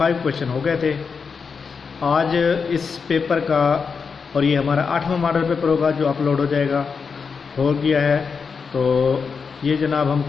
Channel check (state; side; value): quieter; right; 5.5 dB